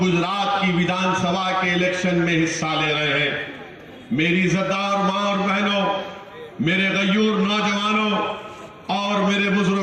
की विधानसभा के इलेक्शन में हिस्सा ले रहे हैं। मेरी इज्जतदार मां और बहनों, मेरे गयूर नौजवानों और मेरे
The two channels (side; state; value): both; identical; correlation 1.00